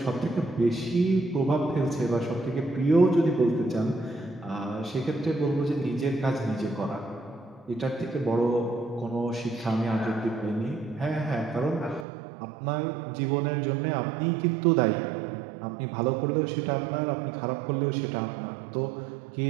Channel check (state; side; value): drops out; left; at 12.1 s